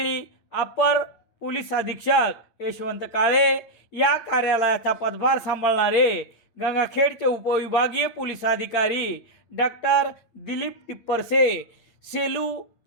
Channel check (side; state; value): right; late; 8.9 ms